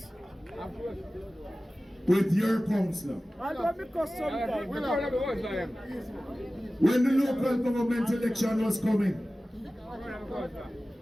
with your councillor. I don't because sometimes. When the local government election was coming,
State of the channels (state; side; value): normal; both; correlation 0.96